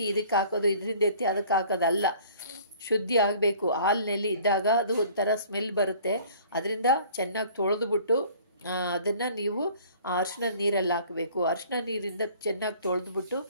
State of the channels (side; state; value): both; inverted; correlation -0.52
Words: ಇದಕ್ಕೆ ಹಾಕೋದು, ಇದರಿಂದ ಎತ್ತಿ ಅದಕ್ಕೆ ಹಾಕೋದಲ್ಲ, ಶುದ್ಧಿ ಆಗಬೇಕು. ಹಾಲಿನಲ್ಲಿ ಇದ್ದಾಗ ಅದು ಒಂಥರ ಸ್ಮೆಲ್ ಬರುತ್ತೆ, ಅದರಿಂದ ಚೆನ್ನಾಗಿ ತೊಳೆದುಬಿಟ್ಟು ಅದನ್ನು ನೀವು ಅರಿಶಿನ ನೀರಲ್ಲಿ ಹಾಕಬೇಕು. ಅರಿಶಿನ ನೀರಿಂದ ಚೆನ್ನಾಗಿ ತೊಳೆದ್ಬಿಟ್ಟು